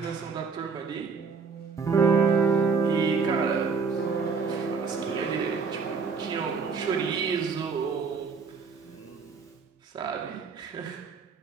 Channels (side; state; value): left; quieter; 5.2 dB